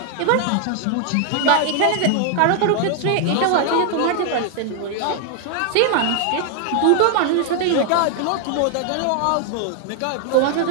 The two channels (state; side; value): different; both; correlation 0.00